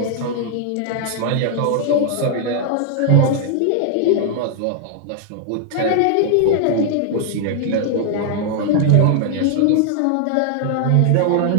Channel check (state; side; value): different; both; correlation 0.00